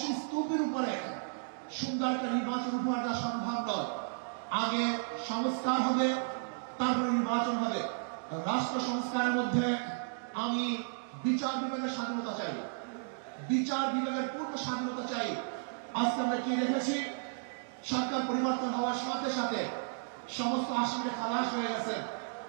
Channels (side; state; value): left; silent; digital silence